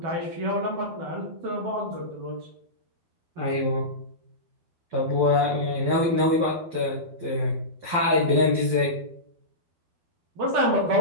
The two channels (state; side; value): late; left; 12 ms